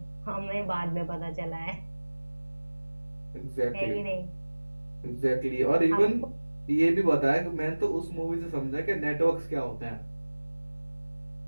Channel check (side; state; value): both; inverted; correlation -1.00